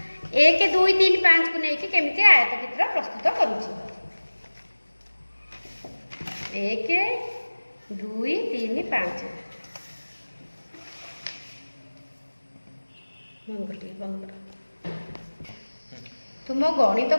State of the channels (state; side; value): inverted; both; correlation -1.00